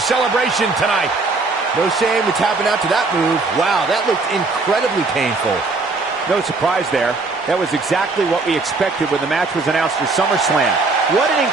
tonight. No shame in tapping out to that move. Wow, that looked incredibly painful. No surprise there. That was exactly what we expected when the match was announced for SummerSlam. What an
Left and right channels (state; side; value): quieter; left; 3.8 dB